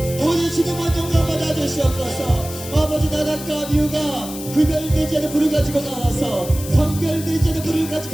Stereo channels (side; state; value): left; noise; hiss, 12 dB below the sound